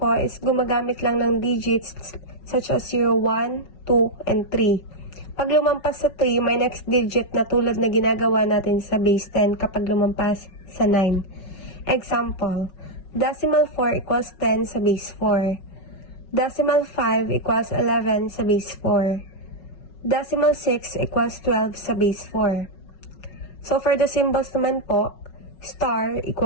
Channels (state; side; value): late; right; 5.4 ms